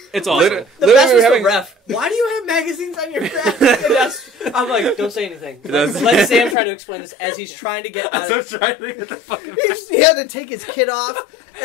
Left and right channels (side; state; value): right; drops out; at 6.6 s